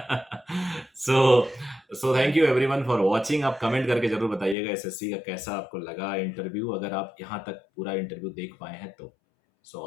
So thank you everyone for watching. आप कमेंट करके जरूर बताइएगा यशस्वी का कैसा आपको लगा इंटरव्यू, अगर आप यहाँ तक पूरा इंटरव्यू देख पाए हैं तो। So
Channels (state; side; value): drops out; right; at 4.5 s